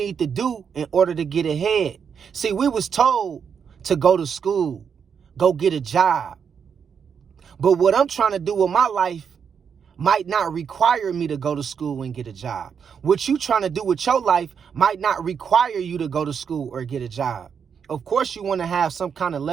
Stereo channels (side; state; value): left; quieter; 6.9 dB